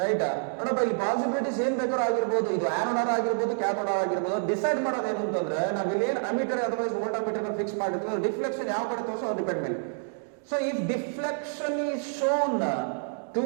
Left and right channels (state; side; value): silent; left; 59 dB below the other